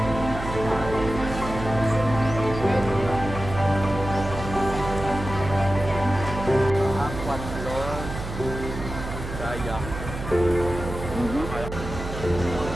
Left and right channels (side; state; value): right; noise; hum, 8 dB below the sound